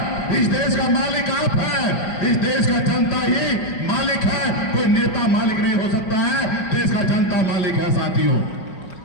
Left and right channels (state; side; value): late; right; 5.4 ms